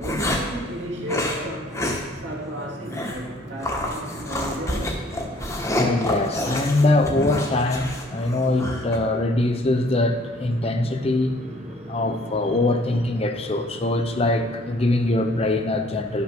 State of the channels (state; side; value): normal; both; correlation 0.58